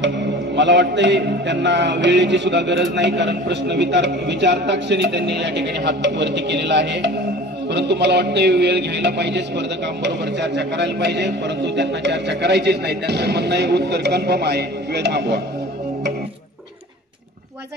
मला वाटतंय त्यांना वेळेची सुद्धा गरज नाही, कारण प्रश्न विचारता क्षणी त्यांनी या ठिकाणी हात वरती केलेला आहे, परंतु मला वाटतंय वेळ घ्यायला पाहिजे, स्पर्धकांबरोबर चर्चा करायला पाहिजे, परंतु त्यांना चर्चा करायचीच नाही। त्यांचं म्हणणं आहे उत्तर कन्फर्म आहे, वेळ थांबवा।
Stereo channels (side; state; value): both; normal; correlation 0.41